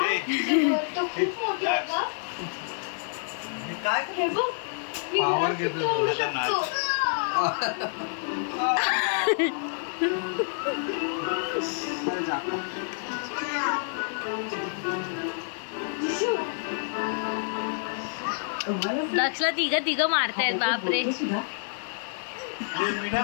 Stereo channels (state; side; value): silent; right; 59 dB below the other